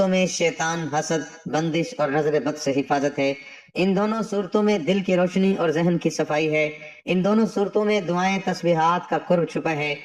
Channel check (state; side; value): identical; both; correlation 1.00